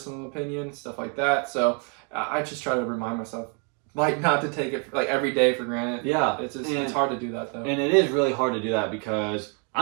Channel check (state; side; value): quieter; left; 38.0 dB